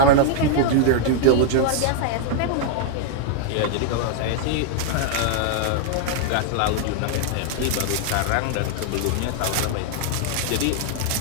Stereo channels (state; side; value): different; both; correlation 0.00